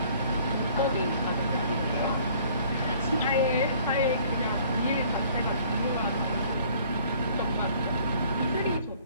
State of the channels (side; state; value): both; inverted; correlation -0.55